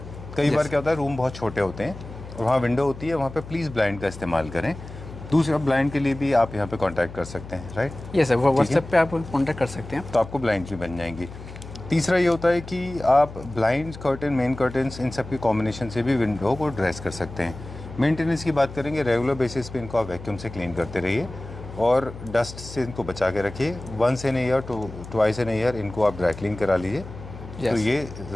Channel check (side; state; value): left; noise; hum, 14 dB below the sound